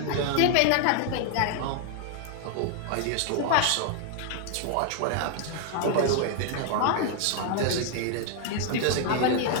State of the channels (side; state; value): both; different; correlation 0.00